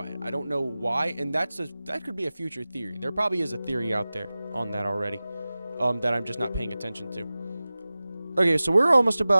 it. I don't know why, and that could be a future theory. There probably is a theory out there on that already, that I'm just not paying attention to. Okay, so we're almost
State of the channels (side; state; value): both; inverted; correlation -0.97